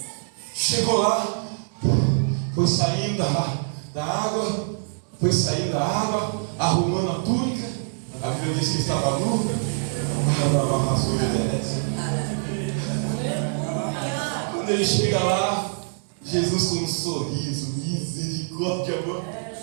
Chegou lá, foi saindo da água, arrumando a túnica. A Bíblia diz que estava nu. Quando ele chega lá, Jesus com um sorriso, misericórdia, amor.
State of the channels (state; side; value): silent; left; digital silence